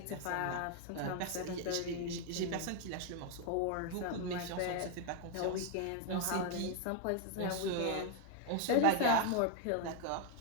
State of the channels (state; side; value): different; both; correlation 0.00